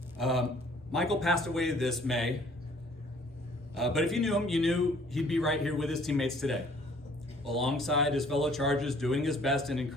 Michael passed away this May, but if you knew him, you knew he'd be right here with his teammates today, alongside his fellow Chargers, doing his best and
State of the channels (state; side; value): normal; both; correlation 0.58